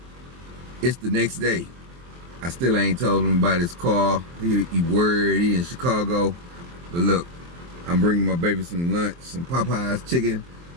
It's the next day. I still ain't told him about his car. He worried, he in Chicago. But look, I'm bringing my baby some lunch, some Popeyes chicken,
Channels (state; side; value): late; left; 23 ms